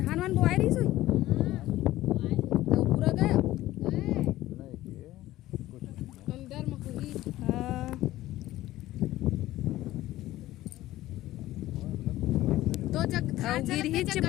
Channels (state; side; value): quieter; right; 15.7 dB